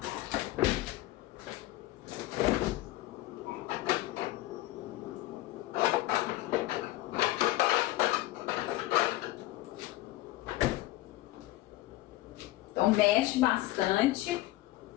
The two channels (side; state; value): right; quieter; 17.5 dB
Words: Então, mexe bastante.